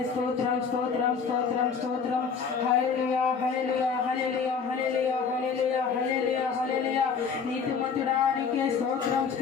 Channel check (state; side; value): quieter; right; 5.9 dB